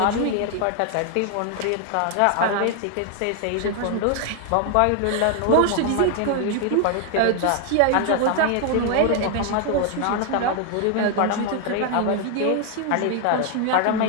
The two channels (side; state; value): both; different; correlation 0.00